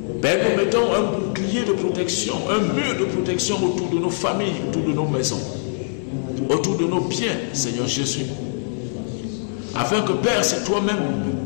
Père, nous mettons un bouclier de protection, un mur de protection autour de nos familles, autour de nos maisons, autour de nos biens, Seigneur Jésus. Afin que, Père, c'est toi-même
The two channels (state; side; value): silent; right; digital silence